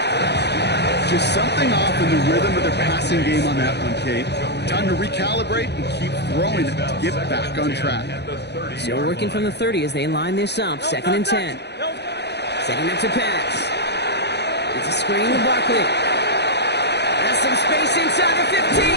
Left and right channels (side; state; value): right; late; 0.49 ms